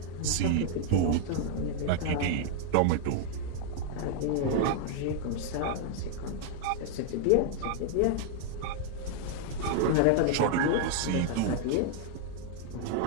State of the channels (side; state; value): both; different; correlation -0.01